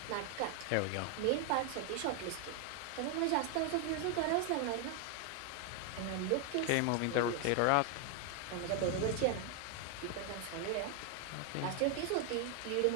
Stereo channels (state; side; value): different; both; correlation 0.01